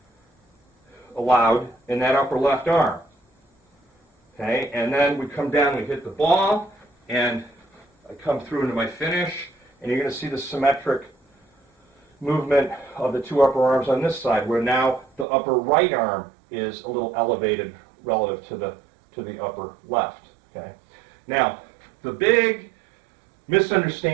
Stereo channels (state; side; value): drops out; left; at 15.2 s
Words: allowed in that upper left arm. Okay, and then we come down, we hit the ball, and I come through into my finish, and you're going to see the symmetric movement of the two upper arms on this side, where now the upper right arm is a little elevated relative to the upper left. Okay, now the big